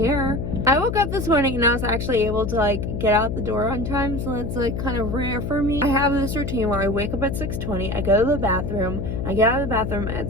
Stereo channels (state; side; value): noise; left; hum, 4 dB below the sound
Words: I woke up this morning and I was actually able to like get out the door on time, so it's like kind of rare for me. I have this routine where I wake up at 6:20, I go to the bathroom, I get out of the bathroom at